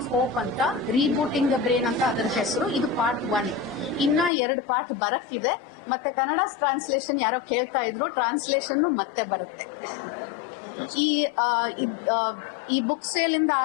ಹೋಪ್ ಅಂತ, ರೀಬೂಟಿಂಗ್ ದ ಬ್ರೈನ್ ಅಂತ ಅದರ ಹೆಸರು. ಇದು ಪಾರ್ಟ್ 1. ಇನ್ನ 2 ಪಾರ್ಟ್ ಬರಕ್ಕಿದೆ. ಮತ್ತೆ ಕನ್ನಡ ಟ್ರಾನ್ಸ್ಲೇಷನ್ ಯಾರೋ ಕೇಳ್ತಾ ಇದ್ರು, ಟ್ರಾನ್ಸ್ಲೇಷನ್ ಮತ್ತೆ ಬರುತ್ತೆ. ಈ ಬುಕ್ ಸೇಲ್ ಇಂದ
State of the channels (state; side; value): drops out; right; at 4.3 s